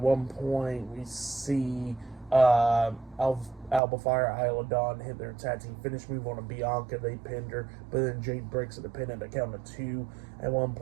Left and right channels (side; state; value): left; drops out; at 3.8 s